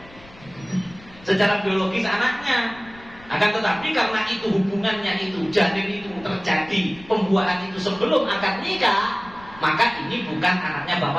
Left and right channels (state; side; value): noise; left; rumble, 22 dB below the sound